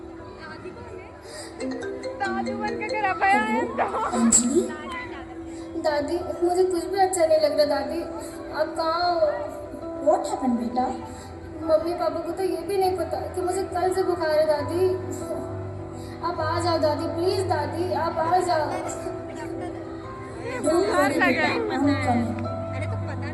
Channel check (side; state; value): both; identical; correlation 1.00